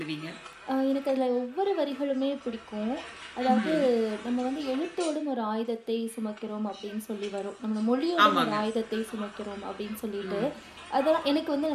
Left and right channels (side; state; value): both; identical; correlation 1.00